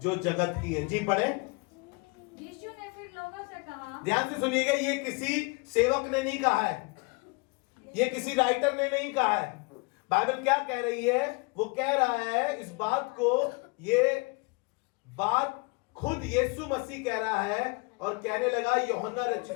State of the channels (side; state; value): right; quieter; 29.6 dB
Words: जगत की है। जी पढ़े। यीशु ने फिर लोगों से कहा, ध्यान से सुनिएगा, ये किसी सेवक ने नहीं कहा है, ये किसी राइटर ने नहीं कहा है। बाइबल क्या कह रही है? वो कह रहा है इस बात को, ये बात खुद यीशु मसीह कह रहा है और कहने लगा यूहन्ना